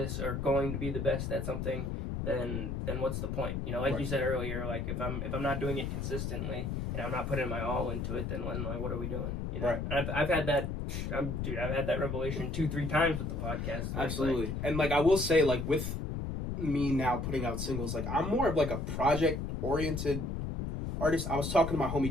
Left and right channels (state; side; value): noise; left; rumble, 3 dB below the sound